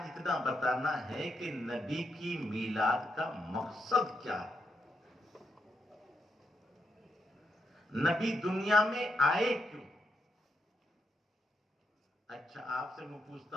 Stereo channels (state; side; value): normal; both; correlation 0.80